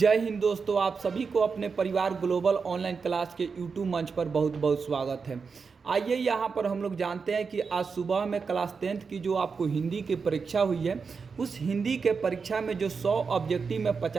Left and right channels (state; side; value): quieter; left; 5.2 dB